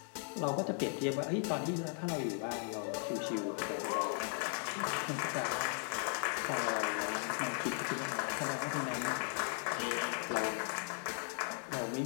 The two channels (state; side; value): silent; right; 53 dB below the other